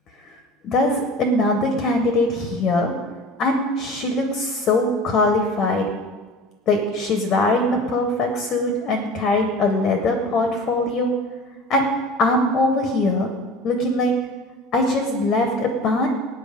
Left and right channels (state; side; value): normal; both; correlation 0.38